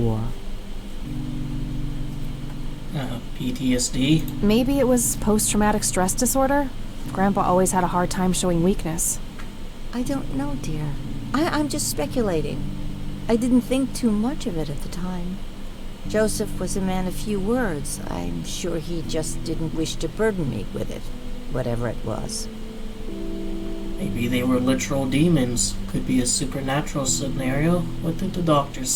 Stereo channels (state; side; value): identical; both; correlation 1.00